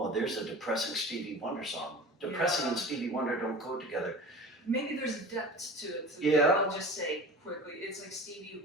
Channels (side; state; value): both; normal; correlation 0.36